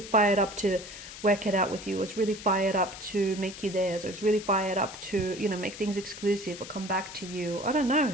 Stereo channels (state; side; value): noise; left; hiss, 13 dB below the sound